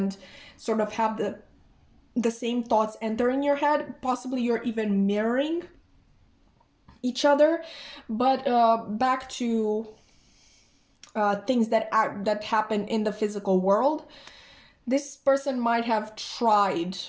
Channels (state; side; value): identical; both; correlation 1.00